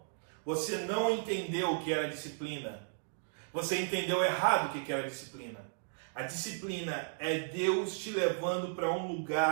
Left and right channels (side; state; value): left; silent; digital silence